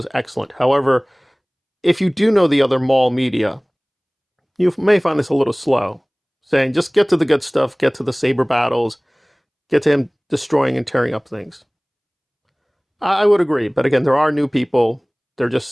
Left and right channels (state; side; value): identical; both; correlation 1.00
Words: excellent. However, if you do know the other Maul media, you may find this a little slow. Saying, just get to the good stuff, get to the saber battles, get to him destroying and tearing up things. I would agree. But again, there are new people. They're just